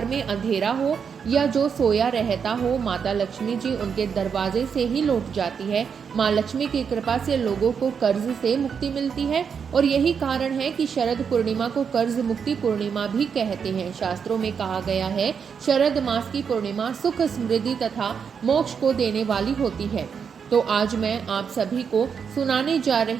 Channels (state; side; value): quieter; left; 6.7 dB